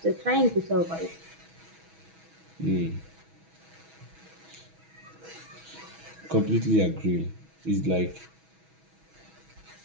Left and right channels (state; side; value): late; left; 6.2 ms